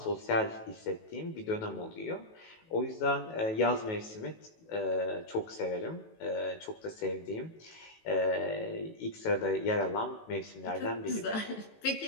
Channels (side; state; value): right; late; 18 ms